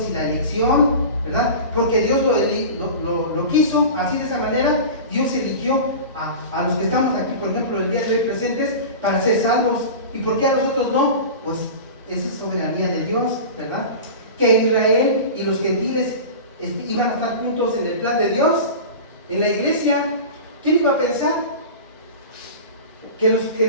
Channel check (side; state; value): both; inverted; correlation -0.32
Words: y la elección, ¿verdad? Porque Dios lo quiso así, de esa manera. Dios eligió a los que estamos aquí, por ejemplo, el día de hoy presentes, para ser salvos. ¿Y por qué a nosotros no? Pues esa es soberanía de Dios, ¿verdad? Que Israel y los gentiles iban a estar juntos en el plan de Dios, en la iglesia. ¿Quién iba a pensar